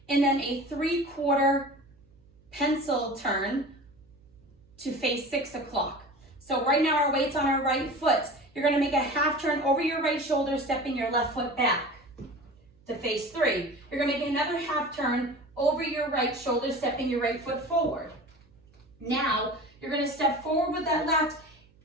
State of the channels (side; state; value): right; noise; hum, 30 dB below the sound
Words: and then a 3/4 pencil turn to face 6 o'clock. So right now our weight's on our right foot. You're going to make a half turn over your right shoulder, stepping your left foot back to face 3. You're going to make another half turn over your right shoulder, stepping your right foot forward. Now you're going to step forward with that left